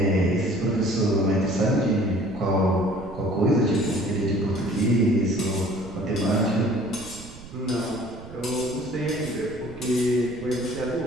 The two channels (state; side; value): noise; right; rumble, 17 dB below the sound